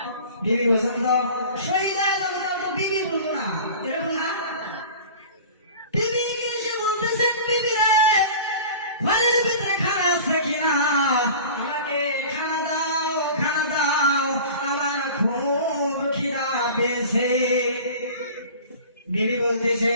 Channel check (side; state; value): both; inverted; correlation -0.40